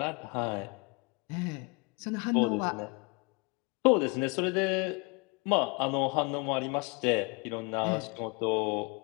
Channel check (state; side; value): quieter; right; 30.2 dB